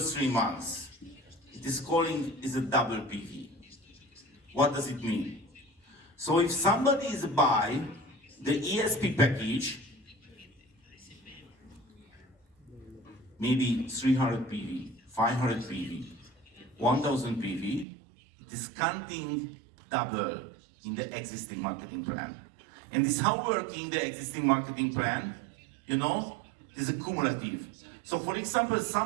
3 months. It is a double PV. What does it mean? So if somebody is buy the ESP package, maybe 300 PV, 500 PV, 1000 PV, it is counting double in the existing marketing plan. And this is how working the existing marketing plan, you know, is a cumulative. So for example,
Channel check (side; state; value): left; drops out; at 17.9 s